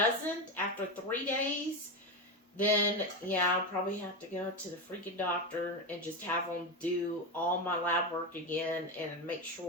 after 3 days, then, I'll probably have to go to the freaking doctor and just have them do all my lab work again and make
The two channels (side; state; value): both; normal; correlation 0.15